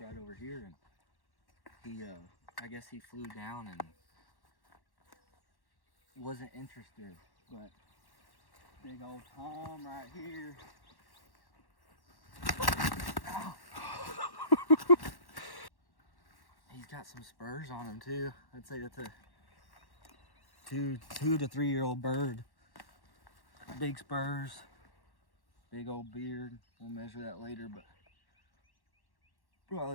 over here, and he, I guess he flew down and wasn't interested. But big old Tom right here. He's got some spurs on him too. I'd say that's a two to 3 year old bird. Big spurs, big old beard. We'll measure that later, but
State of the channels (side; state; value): right; late; 1.1 ms